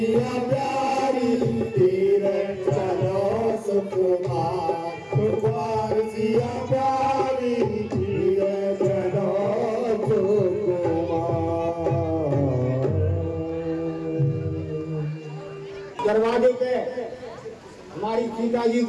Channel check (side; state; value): both; identical; correlation 1.00